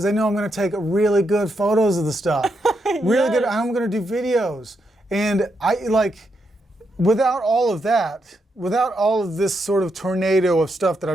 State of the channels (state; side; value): normal; both; correlation 0.81